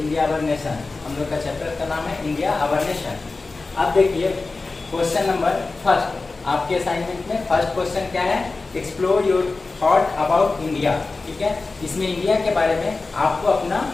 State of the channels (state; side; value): quieter; right; 3.7 dB